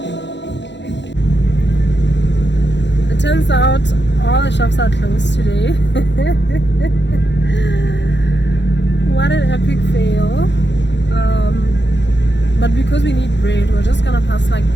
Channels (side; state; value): right; late; 0.52 ms